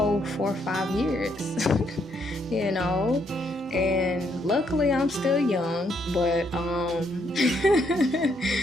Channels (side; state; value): both; normal; correlation 0.73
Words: 4 or 5 years, and luckily I'm still young, but,